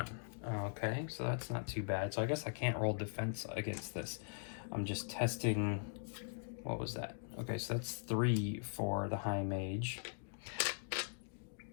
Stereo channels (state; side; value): silent; right; digital silence